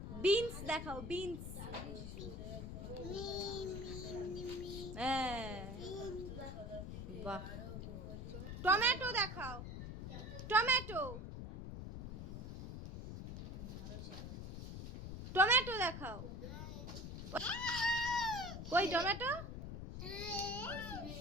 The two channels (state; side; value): noise; left; rumble, 7 dB below the sound